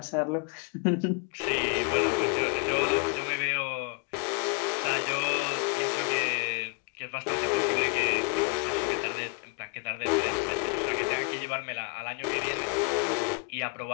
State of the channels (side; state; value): right; quieter; 29.7 dB